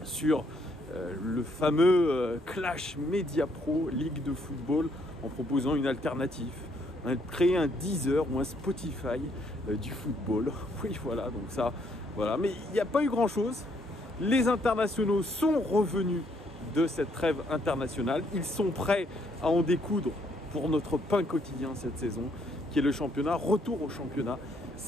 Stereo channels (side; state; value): both; normal; correlation 0.70